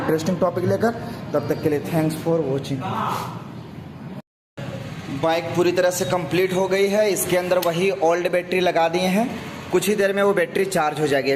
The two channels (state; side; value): identical; both; correlation 1.00